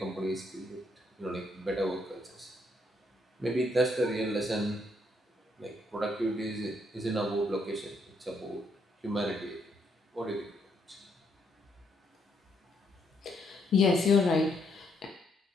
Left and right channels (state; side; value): normal; both; correlation 0.74